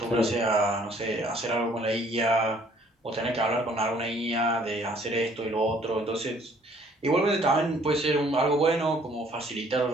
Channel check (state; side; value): normal; both; correlation 0.60